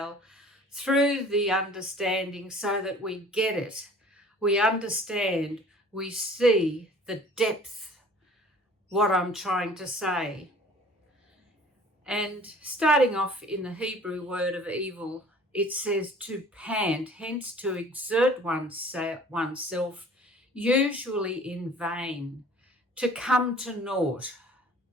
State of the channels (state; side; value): normal; both; correlation 0.49